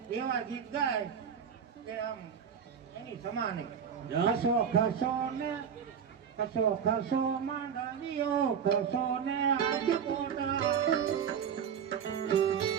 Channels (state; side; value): quieter; left; 7.6 dB